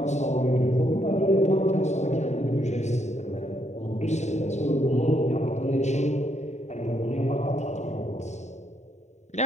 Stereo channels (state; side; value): late; right; 0.33 ms